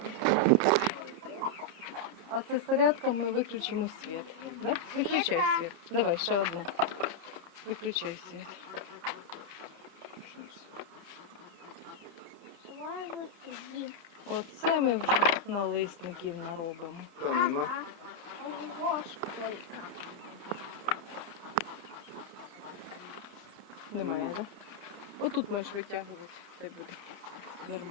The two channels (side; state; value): left; late; 30 ms